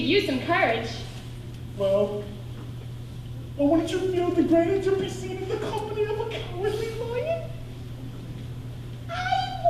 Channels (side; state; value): both; identical; correlation 1.00